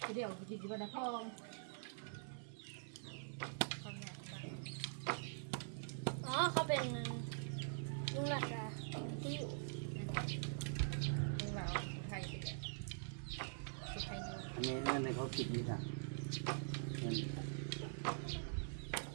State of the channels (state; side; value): silent; left; digital silence